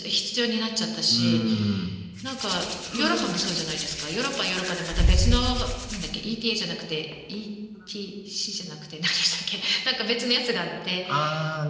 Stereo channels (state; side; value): identical; both; correlation 1.00